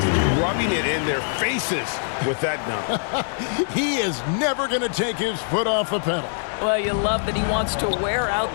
rubbing it in their faces with that dunk. He is never going to take his foot off the pedal. Well, you love that he wants to wear out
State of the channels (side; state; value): right; silent; digital silence